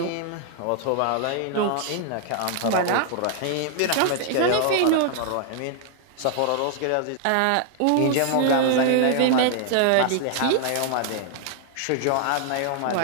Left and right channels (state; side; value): different; both; correlation 0.00